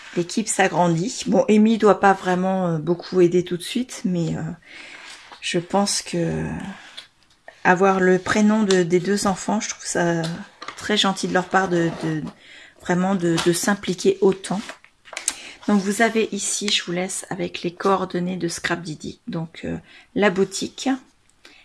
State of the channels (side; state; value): both; identical; correlation 1.00